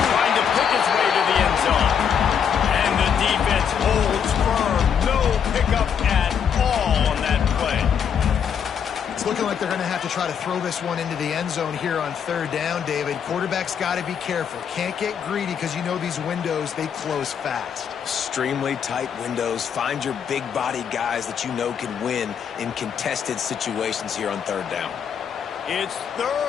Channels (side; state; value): right; quieter; 7.7 dB